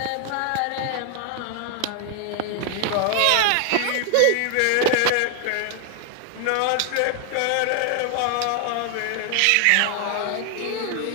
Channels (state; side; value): different; both; correlation 0.00